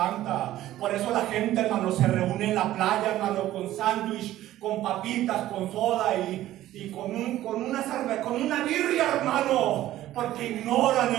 Por eso la gente, hermano, se reúne en la playa, hermano, con sándwich, con papitas, con soda y con una cerveza, con una birria, hermano. Porque ignoran,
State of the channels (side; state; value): left; quieter; 14.2 dB